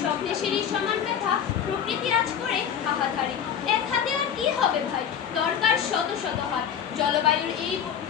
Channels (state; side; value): quieter; right; 8.4 dB